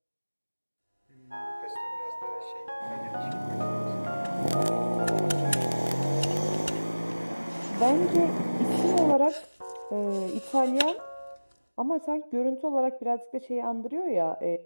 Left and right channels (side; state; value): both; inverted; correlation -1.00